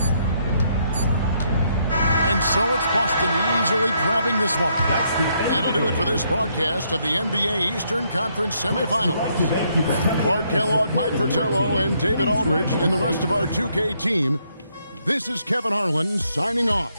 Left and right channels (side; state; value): both; inverted; correlation -0.73